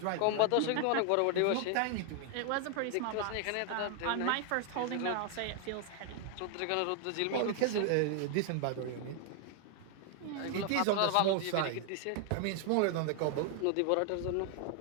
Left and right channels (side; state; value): both; different; correlation 0.00